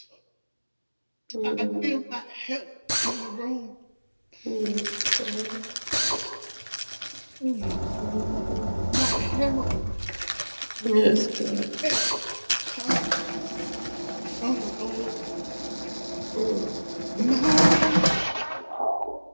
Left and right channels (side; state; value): both; inverted; correlation -1.00